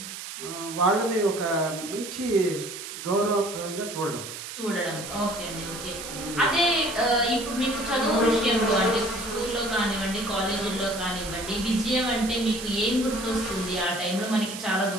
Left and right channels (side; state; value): right; noise; hiss, 9 dB below the sound